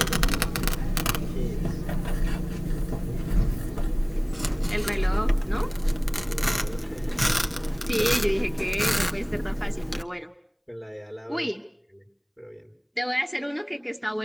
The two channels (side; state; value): both; identical; correlation 1.00